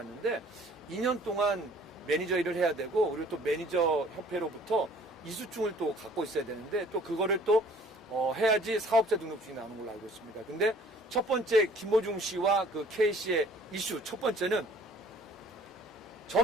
2년 동안 매니저 일을 해야 되고 그리고 또 매니저 협회로부터 이수증을 또 갖고 있어야 되는데 또 그거를 또 해야지 사업자 등록증이 나오는 걸로 알고 있습니다. 근데 첫 번째 김호중 씨와 그 K씨의 이슈 첫 번째는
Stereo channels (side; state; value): both; normal; correlation 0.55